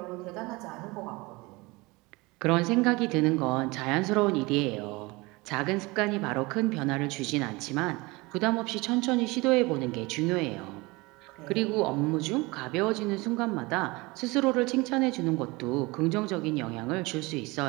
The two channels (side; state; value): left; quieter; 23.8 dB